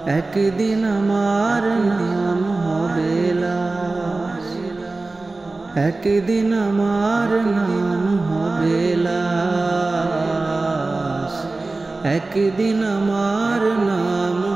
একদিন আমার নাম হবে লাশ, একদিন আমার নাম হবে লাশ, একদিন আমার নাম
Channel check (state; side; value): quieter; left; 3.3 dB